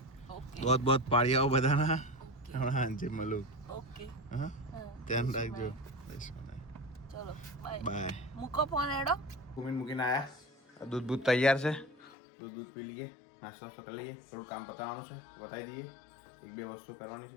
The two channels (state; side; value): drops out; right; at 12.1 s